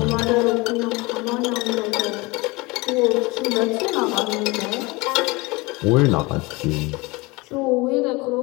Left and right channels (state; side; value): quieter; right; 24.2 dB